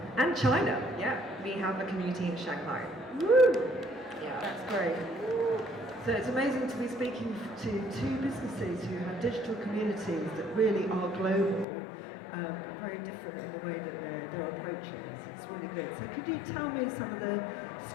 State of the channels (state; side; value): drops out; right; at 11.7 s